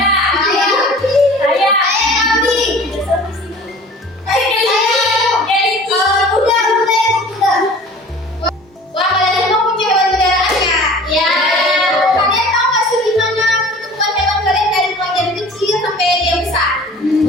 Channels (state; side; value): normal; both; correlation 0.45